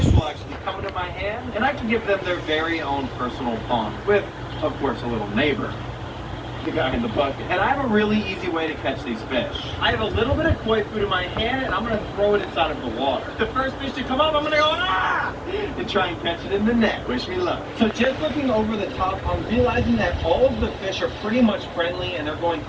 will actually come into my hand, and I can give them their very own personal pond with, of course, a little neighbor. The guy in the bucket. And I have a really easy way to catch these fish. I have a little bit of koi food in my hand, and I'm going to throw it inside of the water. The first fish to come up, I'm going to go, ah! And try and catch it in the net. Wish me luck. So just looking over the top, I'm realizing that all of the fish are pretty much friendly, and they're going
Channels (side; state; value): both; identical; correlation 1.00